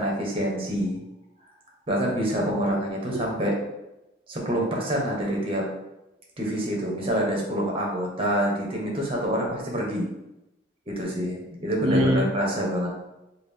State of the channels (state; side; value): normal; both; correlation 0.45